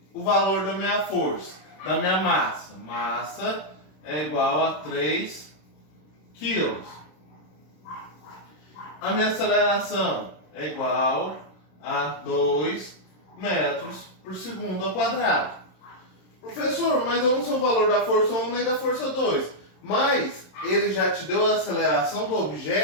o valor da minha força, da minha massa. Massa é igual a 3 quilos. A minha aceleração é igual a 2 metros por segundo ao quadrado. Professor, mas eu não sei o valor da força 1 nem da força 2. Mas ele já te deu a aceleração do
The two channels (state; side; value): late; right; 26 ms